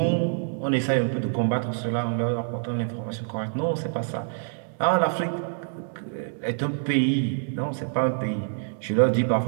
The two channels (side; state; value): left; silent; digital silence